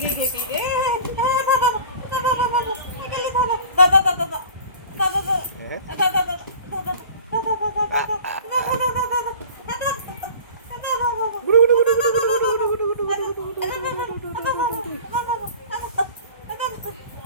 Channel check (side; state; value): both; inverted; correlation -0.42